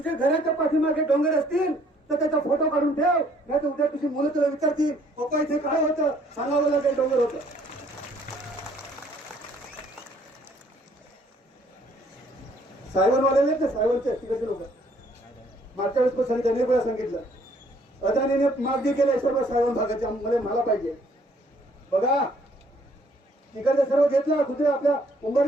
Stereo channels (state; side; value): normal; both; correlation 0.63